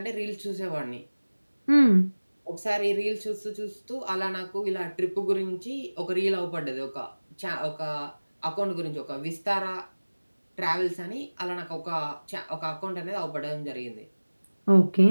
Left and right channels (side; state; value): both; inverted; correlation -1.00